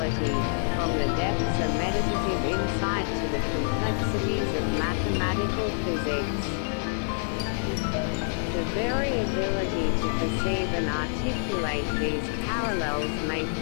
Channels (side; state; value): right; silent; digital silence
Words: from the depths of meditative insight to the complexities of mathematical physics. The very ability to perceive and articulate these parallels may